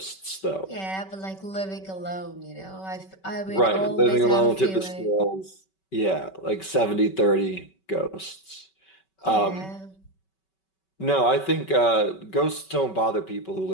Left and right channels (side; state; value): right; late; 5.3 ms